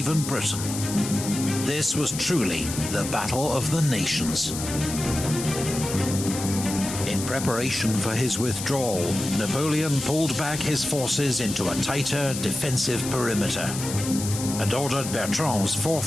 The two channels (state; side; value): noise; left; hiss, 7 dB below the sound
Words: Britain. This was truly the Battle of the Nations. In preparation for his withdrawal, Napoleon pulled back his forces into a tighter defensive perimeter and ordered Bertrand's